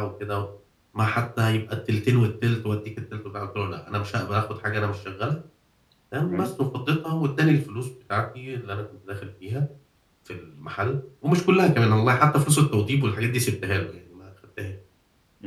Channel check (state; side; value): identical; both; correlation 1.00